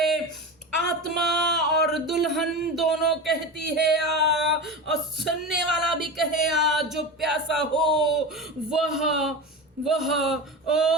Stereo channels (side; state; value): both; normal; correlation 0.25